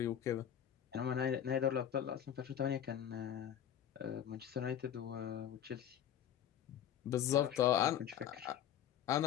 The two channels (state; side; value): quieter; right; 10.0 dB